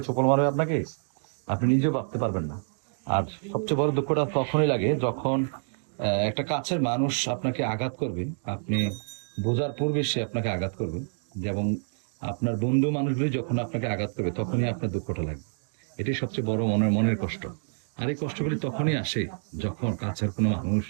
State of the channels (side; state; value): left; silent; digital silence